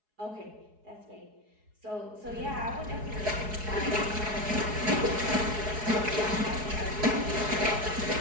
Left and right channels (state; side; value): late; left; 4.7 ms